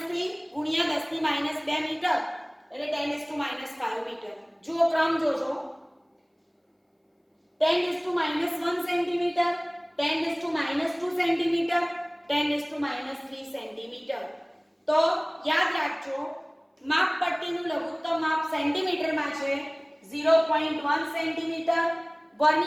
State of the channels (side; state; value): both; identical; correlation 1.00